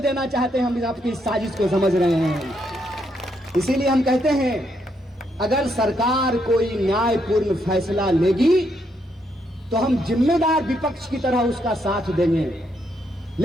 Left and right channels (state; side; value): normal; both; correlation 0.77